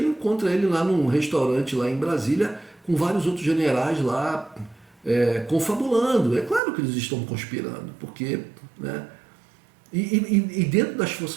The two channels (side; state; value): left; drops out; at 6.6 s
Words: encontra ele lá num restaurante lá em Brasília com vários outros generais lá confabulando. É claro que eles estão conspirando, porque, né? E dentro das